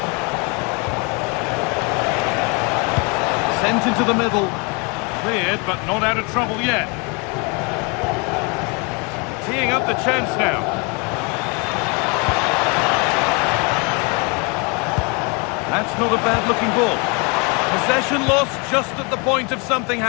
Sent into the middle. Cleared, but not out of trouble yet. Teeing up the chance now. That's not a bad-looking ball. Possession lost just at the point of something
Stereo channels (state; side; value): quieter; right; 31.7 dB